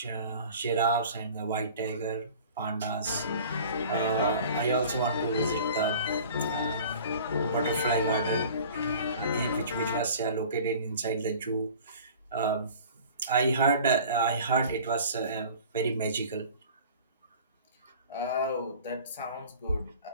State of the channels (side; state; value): both; inverted; correlation -0.44